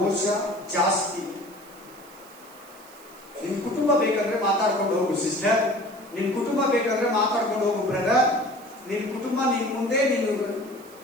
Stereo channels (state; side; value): noise; right; hiss, 23 dB below the sound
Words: ಜಾಸ್ತಿ. ನಿನ್ ಕುಟುಂಬ ಬೇಕಂದ್ರೆ ಮಾತಾಡ್ಕೊಂಡು ಹೋಗು ಸಿಸ್ಟರ್, ನಿನ್ ಕುಟುಂಬ ಬೇಕಂದ್ರೆ ಮಾತಾಡ್ಕೊಂಡು ಹೋಗು ಬ್ರದರ್. ನಿನ್ ಕುಟುಂಬ ನಿನ್ ಮುಂದೆ